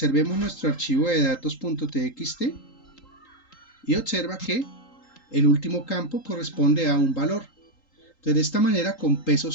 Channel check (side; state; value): right; late; 3.8 ms